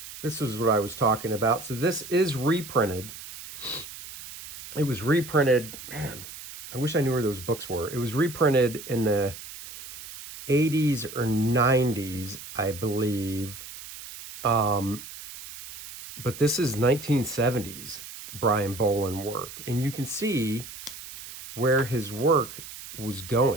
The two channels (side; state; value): right; noise; hiss, 13 dB below the sound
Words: This is what I was talking about. So this is reprinted. It was reprinted, man, I wish I knew where those books were. It was reprinted in the 80s or 90s, I believe. But this is 1970s Brian Bolland work. And you can see where his work was